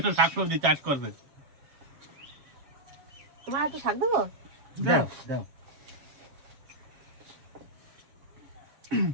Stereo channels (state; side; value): late; left; 7.3 ms